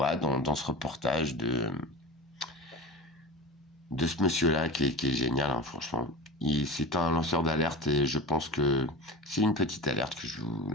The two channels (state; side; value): normal; both; correlation 0.30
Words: dans ce reportage de ce monsieur-là qui est génial, hein, franchement. C'est un lanceur d'alerte et je pense que c'est une petite alerte que je vous